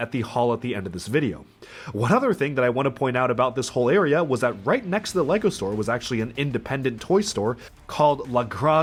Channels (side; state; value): both; identical; correlation 1.00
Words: the haul at the end of this video. One other thing that I want to point out about this whole area was that right next to the LEGO store was actually an independent toy store called La